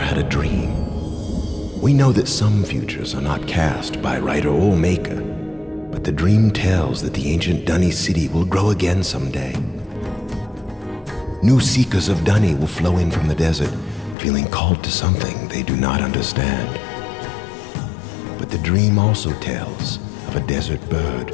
a dream. We know that some futures are not cast by writer or maker, but the dream tells that the ancient Dunny city will grow again someday. New seekers of Dunny will flow in from the desert, feeling called to something they do not understand. But the dream also tells of a desert bird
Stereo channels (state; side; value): drops out; right; at 14.2 s